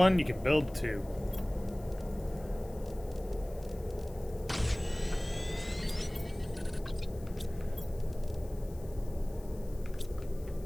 you can build two.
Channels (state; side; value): noise; left; hiss, 23 dB below the sound